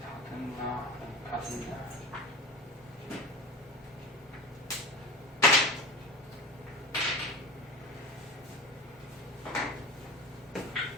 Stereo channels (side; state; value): both; normal; correlation 0.31